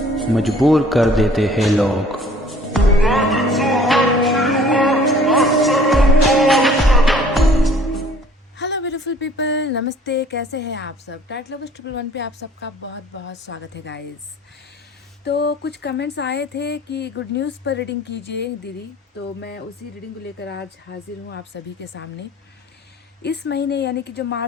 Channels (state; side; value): normal; both; correlation 0.54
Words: मजबूर कर देते हैं लोग। हेलो ब्यूटीफुल पीपल, नमस्ते। कैसे हैं आप सब? टाइट लवर्स 111 पे आप सबका बहुत बहुत स्वागत है गाइस। तो कुछ कमेंट्स आए थे कि गुड न्यूज़ पर रीडिंग कीजिए दीदी, तो मैं उसी रीडिंग को लेकर आज हाजिर हूँ आप सभी के सामने। इस महीने यानी कि जो